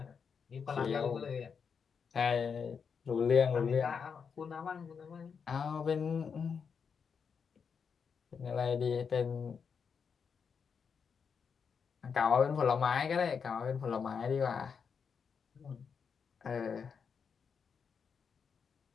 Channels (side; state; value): right; quieter; 6.3 dB